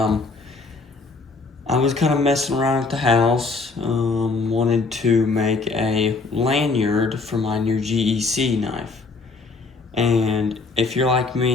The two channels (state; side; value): quieter; right; 4.0 dB